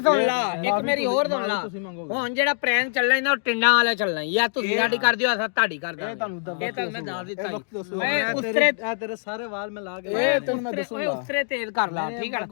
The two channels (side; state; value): right; silent; digital silence